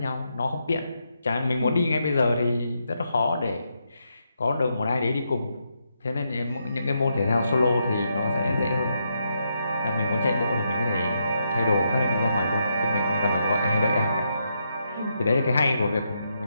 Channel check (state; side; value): inverted; both; correlation -0.80